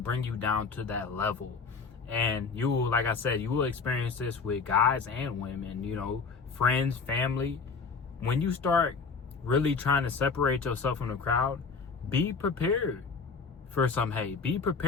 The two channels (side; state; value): right; quieter; 5.0 dB